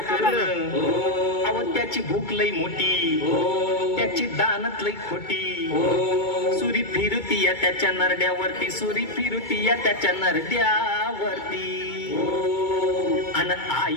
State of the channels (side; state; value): right; late; 2.2 ms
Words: करण अव त्याची भूक लय मोठी त्याची दानत लय खोटी सुरी फिरती या त्याच्या नरड्यावरती सुरी फिरती या त्याच्या नरड्यावरती अन